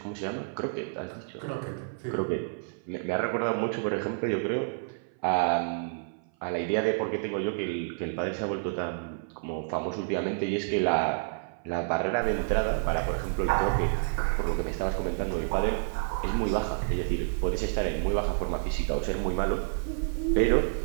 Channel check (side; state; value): left; silent; 56 dB below the other